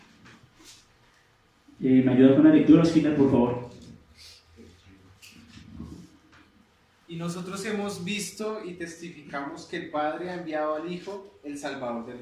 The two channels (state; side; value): identical; both; correlation 1.00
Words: ¿Me ayuda con la lectura, Osquita, por favor? Y nosotros hemos visto y testificamos que el Padre ha enviado al Hijo, el Salvador del